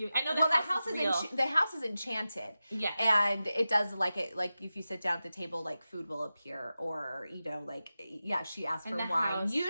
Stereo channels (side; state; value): both; inverted; correlation -0.93